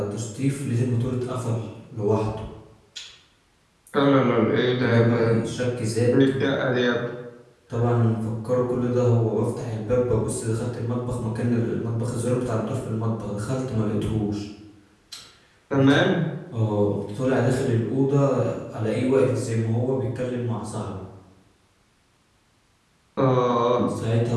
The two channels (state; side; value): identical; both; correlation 1.00